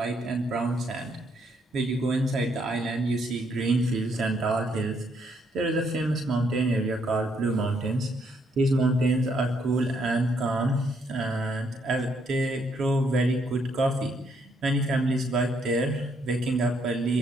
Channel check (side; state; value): both; normal; correlation 0.72